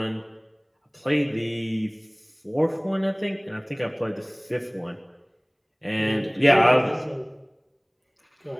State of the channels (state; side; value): identical; both; correlation 1.00